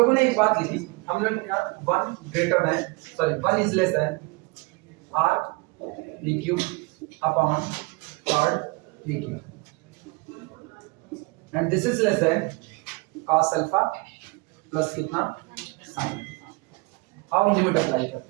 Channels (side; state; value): left; quieter; 27.1 dB